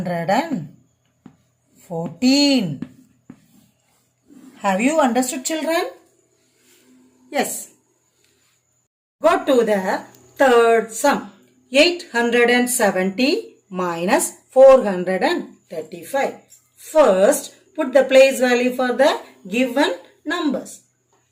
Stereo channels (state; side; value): identical; both; correlation 1.00